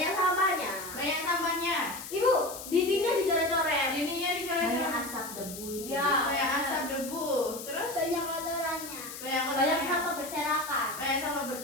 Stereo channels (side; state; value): left; noise; hiss, 11 dB below the sound